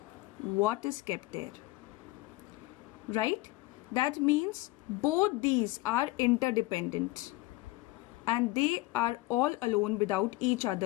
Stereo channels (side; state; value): right; quieter; 20.4 dB